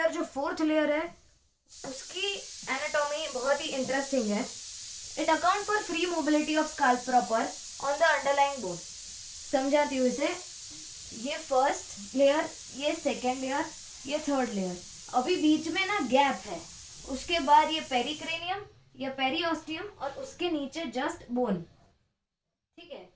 जो 4th लेयर है उसकी एनाटॉमी बहुत ही इंटरेस्टिंग है। It account for free mobility of scalp proper on the underlying bone. समझाती हूँ इसे, ये फर्स्ट लेयर, ये सेकेंड लेयर, ये थर्ड लेयर, अभी बीच में ना गैप है, उसके बाद ये पेरिक्रेनियम या पेरियोस्टियम और उसके नीचे जस्ट बोन। ठीक है,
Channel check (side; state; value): both; identical; correlation 1.00